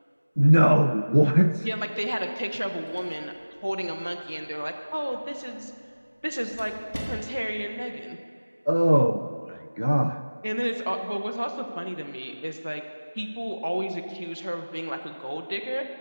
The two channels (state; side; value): inverted; both; correlation -1.00